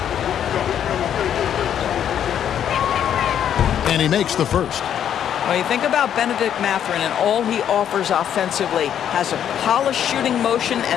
And he makes the first. When you think about Benedict Mathurin and all he offers offensively, has a polished shooting motion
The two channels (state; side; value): quieter; right; 9.5 dB